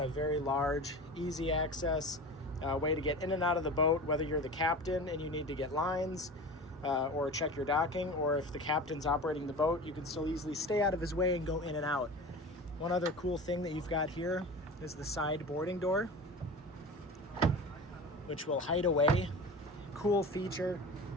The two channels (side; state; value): both; normal; correlation 0.33